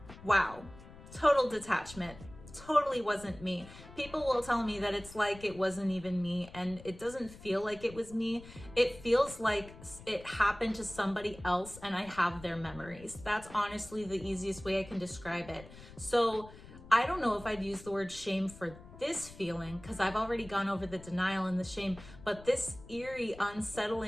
wow, total detachment, totally wasn't me. People will tell me that it's like it wasn't even me, and it doesn't feel like it was me. It feels like it happened to somebody else and I have their memories. That's honestly the easiest way I can describe it. So I don't know if I'd use the word shame for this feeling, because I've already gone over the denial and the shame, but this eerie,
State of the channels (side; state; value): left; noise; rumble, 18 dB below the sound